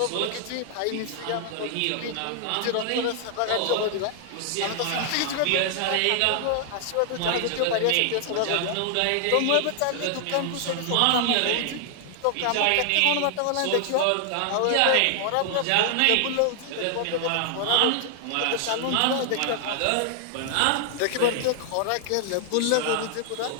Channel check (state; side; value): different; both; correlation 0.00